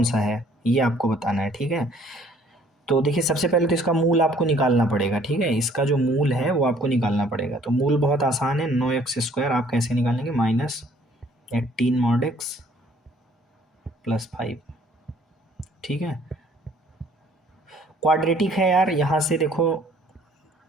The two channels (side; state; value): both; normal; correlation 0.58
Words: सा है, ये आपको बताना है, ठीक है। तो देखिए सबसे पहले तो इसका मूल आपको निकालना पड़ेगा, ठीक है। इसका जो मूल है वो आपको निकालना पड़ेगा। तो मूल बहुत आसान है, 9x² आप कैसे निकालेंगे, -18 mod x + 5, ठीक है। क्वाड्रेटिक है यार, यहाँ से देखो